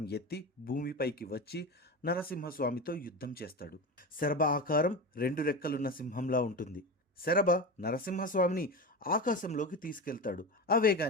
ఎత్తి భూమిపైకి వచ్చి నరసింహస్వామితో యుద్ధం చేస్తాడు. శరభ ఆకారం 2 రెక్కలున్న సింహంలా ఉంటుంది. శరభ నరసింహస్వామిని ఆకాశంలోకి తీసుకెళ్తాడు. ఆ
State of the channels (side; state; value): both; normal; correlation 0.23